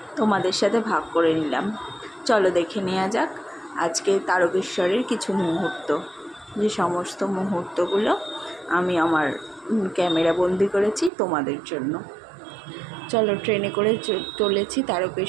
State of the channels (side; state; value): left; drops out; at 11.1 s